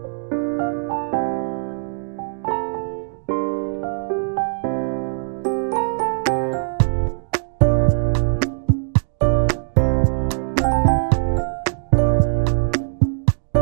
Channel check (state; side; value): silent; left; digital silence